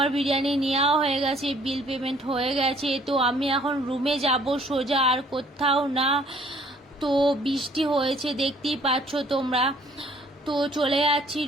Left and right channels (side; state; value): both; normal; correlation 0.59